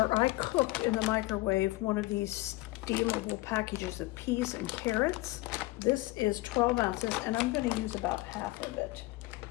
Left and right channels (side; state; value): right; quieter; 20.2 dB